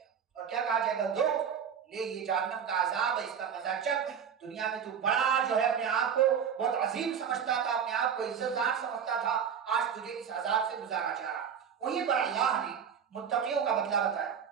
اور کیا کہا جائے گا، ذوق لے یہ جہنم کا عذاب ہے، اس کا مزہ چکھ، دنیا میں تو بڑا جو ہے اپنے آپ کو بہت عظیم سمجھتا تھا، اپنے آپ کو عزت دار سمجھتا تھا، آج تجھے اس عذاب سے گزارا جا رہا۔ وہیں پر اللہ نے متقیوں کا بدلہ بتایا،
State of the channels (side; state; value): left; quieter; 7.7 dB